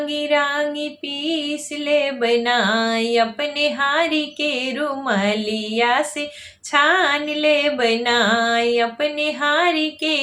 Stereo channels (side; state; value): both; identical; correlation 1.00